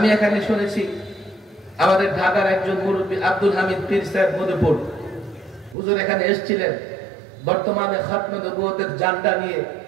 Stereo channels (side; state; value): left; drops out; at 5.8 s